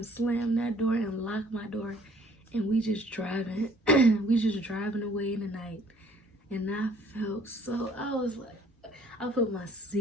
slam that door and lock my door. And we just driving. We just driving away in the night. And I was like, I put my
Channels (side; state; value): both; normal; correlation 0.58